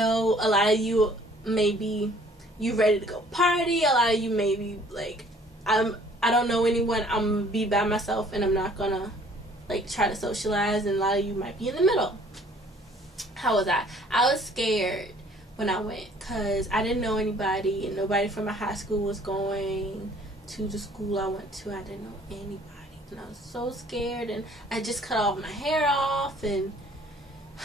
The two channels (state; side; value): normal; both; correlation 0.56